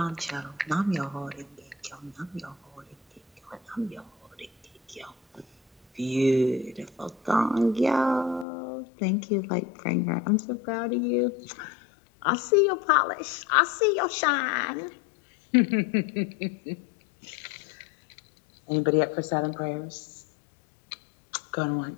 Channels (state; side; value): drops out; right; at 8.5 s